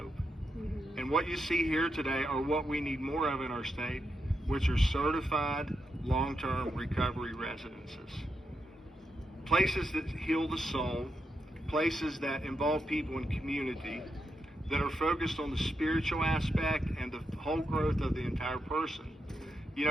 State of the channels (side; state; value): both; normal; correlation 0.84